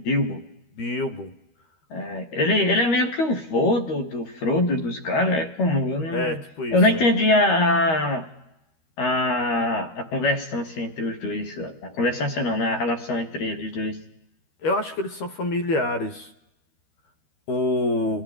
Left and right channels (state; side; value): late; right; 13 ms